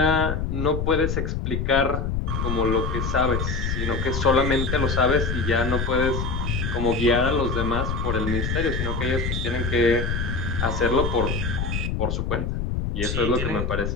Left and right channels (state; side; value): noise; left; rumble, 1 dB below the sound